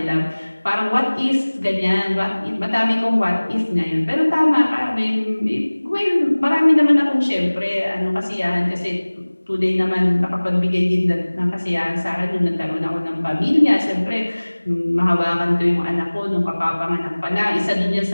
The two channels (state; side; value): inverted; both; correlation -1.00